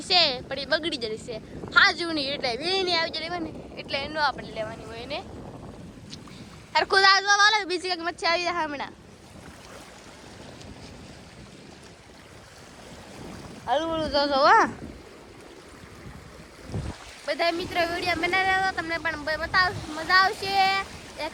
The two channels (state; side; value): identical; both; correlation 1.00